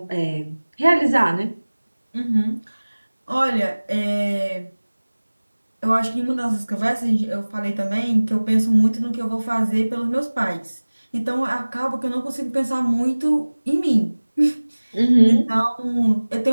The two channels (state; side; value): inverted; both; correlation -1.00